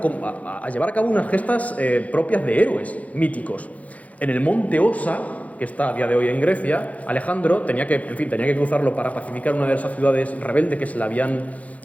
a llevar a cabo unas gestas propias de héroes míticos. En el monte Osa, que está a día de hoy en Grecia, Alejandro tenía que cruzarlo para pacificar una de esas ciudades rebeldes que se le habían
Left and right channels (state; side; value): late; right; 0.069 ms